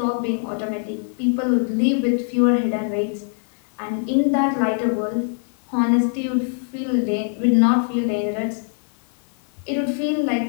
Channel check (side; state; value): right; silent; 62 dB below the other